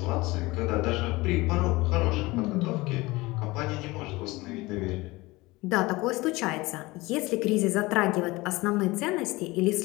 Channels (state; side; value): quieter; right; 21.5 dB